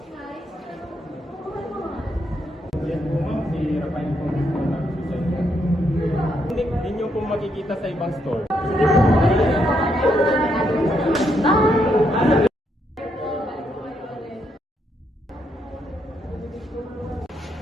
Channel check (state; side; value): normal; both; correlation 0.77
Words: Yan po ma'am, si Rafael po dito nag-suicide. Hindi nyo po makikita sa ibang store.